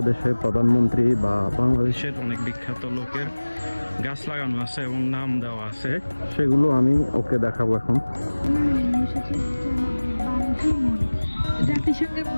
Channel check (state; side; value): inverted; both; correlation -1.00